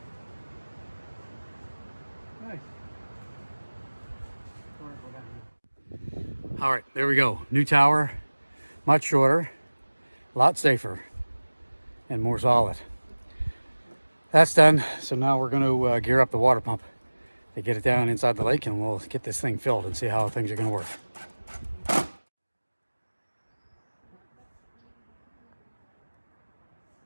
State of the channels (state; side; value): inverted; both; correlation -1.00